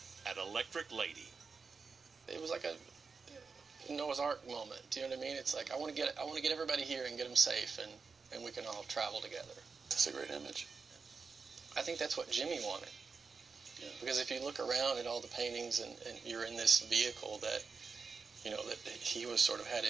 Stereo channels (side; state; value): left; quieter; 4.9 dB